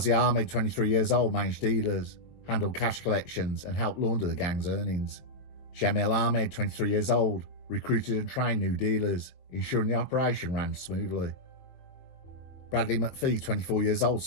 Ahmed, 23 years old, managed dealers, handled cash collections, and helped launder the gang's earnings. Jamil Ahmed, 23 years old, recruited and trained new dealers, ensuring the operation ran smoothly. Bradley.It, 24 years old,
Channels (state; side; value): late; right; 22 ms